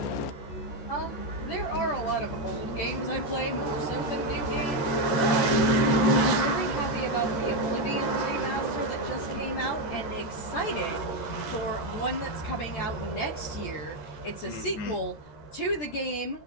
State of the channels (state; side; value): late; right; 14 ms